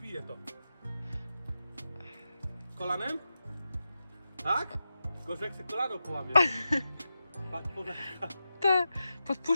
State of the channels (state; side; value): inverted; both; correlation -0.91